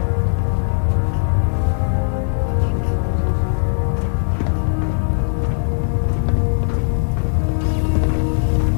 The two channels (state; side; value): silent; right; digital silence